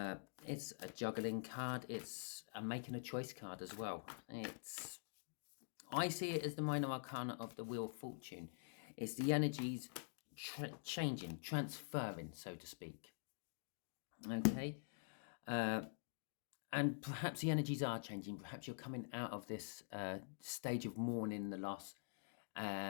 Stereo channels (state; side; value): silent; right; digital silence